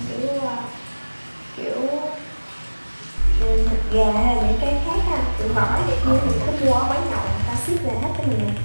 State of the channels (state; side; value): inverted; both; correlation -1.00